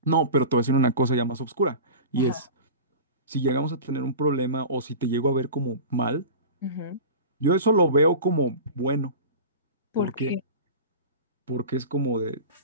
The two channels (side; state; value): both; inverted; correlation -0.33